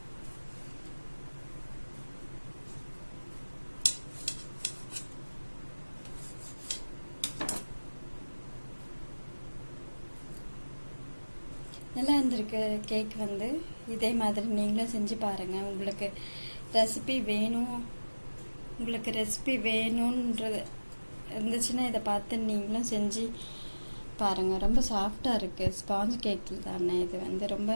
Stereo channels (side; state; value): both; inverted; correlation -1.00